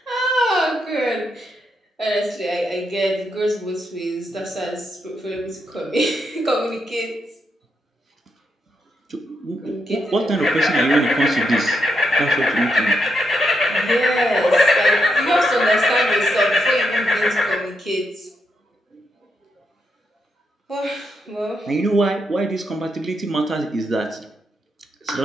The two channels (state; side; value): normal; both; correlation 0.82